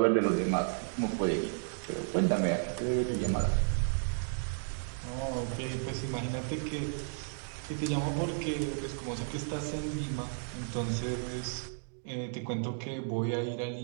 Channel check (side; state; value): left; silent; digital silence